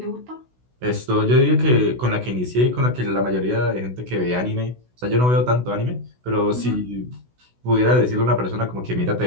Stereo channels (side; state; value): left; late; 16 ms